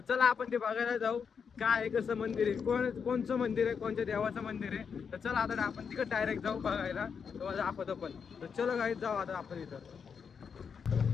चला आपण ते बघायला जाऊ. काय आहे, कसं मंदिर आहे, कोणचं मंदिर आहे, कोणत्या देवाचं मंदिर आहे. तर चला आता आपण तिकडे डायरेक्ट जाऊ बघायला. तुम्हाला दाखवतो पण. तर चलो गाईज जाऊ आता आपण इथं.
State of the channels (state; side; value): quieter; right; 6.4 dB